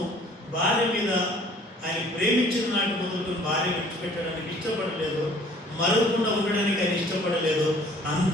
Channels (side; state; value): both; normal; correlation 0.54